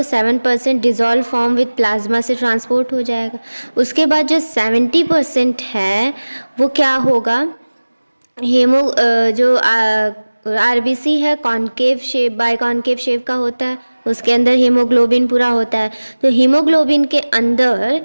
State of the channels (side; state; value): both; inverted; correlation -1.00